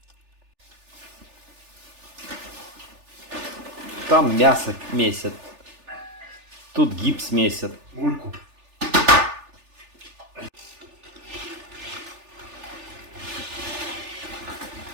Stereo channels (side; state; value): left; late; 3.4 ms